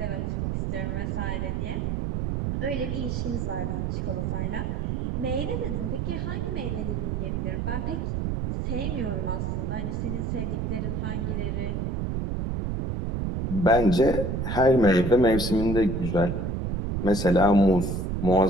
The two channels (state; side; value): noise; right; rumble, 1 dB below the sound